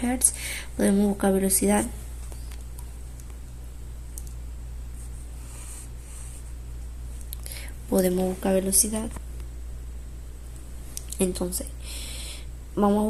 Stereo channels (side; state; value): both; identical; correlation 1.00